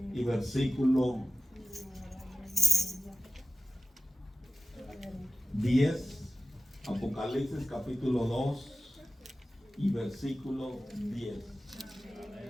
y versículo 10. Apocalipsis capítulo 2 y versículo 10.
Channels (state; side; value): normal; both; correlation 0.95